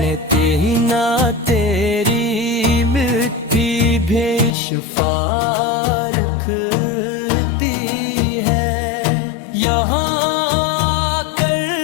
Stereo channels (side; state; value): right; drops out; at 4.5 s